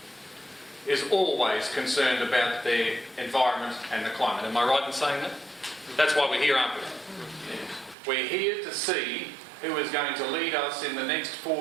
is always concerned about their environment and the climate. Am I right in saying that? That's why we're here, aren't we? We're here to see who is going to lead us in the next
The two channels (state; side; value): drops out; left; at 8.0 s